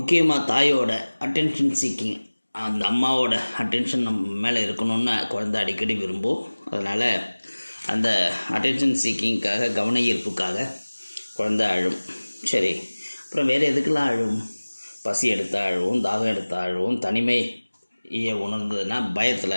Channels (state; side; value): inverted; both; correlation -1.00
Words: தாயோட அட்டென்ஷன் சீக்கிங், அந்த அம்மாவோட அட்டென்ஷன் நம்ம மேலே இருக்கணும்னு குழந்தை அடிக்கடி விரும்பும். அதனால் அந்த அட்டென்ஷன் சீக்கிங்காக, கவன ஈர்ப்புக்காக குழந்தை அழும். சரி, அப்புறம் வேறு எதுக்கெல்லாம் அழும்? பசி எடுத்தால் அழுவும், தாகம் எடுத்தால் அழுவும், தனிமையை உணர்ந்ததுன்னா